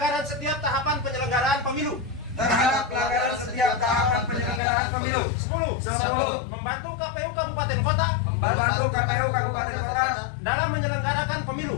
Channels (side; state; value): right; drops out; at 4.6 s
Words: setiap tahapan penyelenggaraan pemilu. 10. Membantu KPU kabupaten kota dalam menyelenggarakan pemilu.